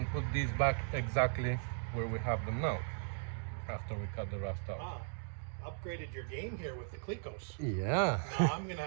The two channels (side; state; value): left; silent; digital silence